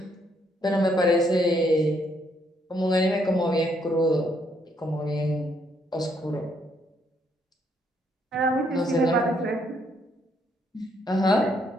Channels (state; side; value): normal; both; correlation 0.72